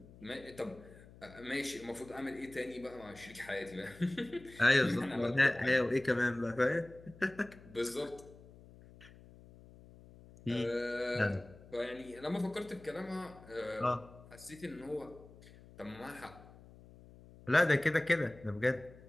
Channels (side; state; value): left; noise; hum, 21 dB below the sound